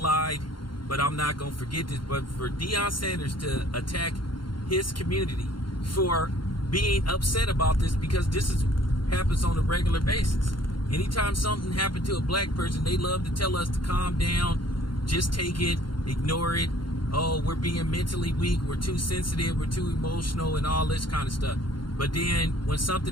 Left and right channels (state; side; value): late; right; 0.72 ms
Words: but I'm not going to forget this. But for Deion Sanders to attack his community for being upset about this, because this happens on a regular basis. Anytime something happened to a black person, they love to tell us to calm down, just take it, ignore it. Oh, we're being mentally weak, we're too sensitive, we're too emotional, and all this kind of stuff. But then when